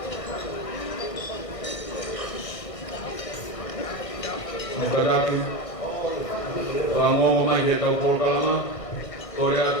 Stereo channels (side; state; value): right; late; 1.5 ms